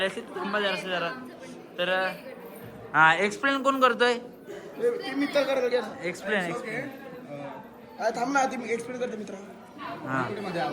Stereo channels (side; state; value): both; identical; correlation 1.00